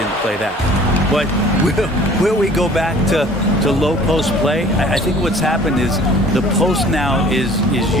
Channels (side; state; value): both; normal; correlation 0.50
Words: play that. But will we go back to low post play? I think what's happened is the post now is